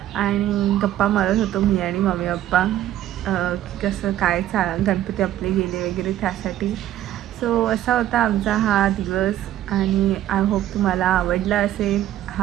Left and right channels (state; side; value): quieter; left; 12.7 dB